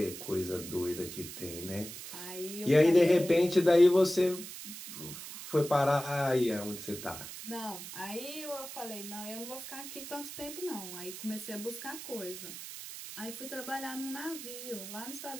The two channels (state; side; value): noise; right; hiss, 10 dB below the sound